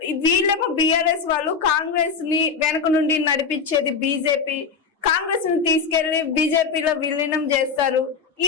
వీళ్ళేమో బిఆర్ఎస్ వాళ్ళు కాంగ్రెస్ ని వెనక నుండి నడిపించేది బీజేపీ, కాంగ్రెస్ ని తీసుకెళ్లి బీజేపీలో విలీనం చేస్తారు.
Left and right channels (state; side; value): quieter; right; 5.6 dB